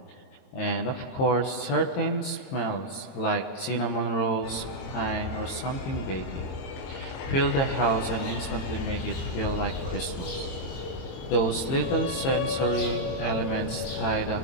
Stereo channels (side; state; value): right; late; 22 ms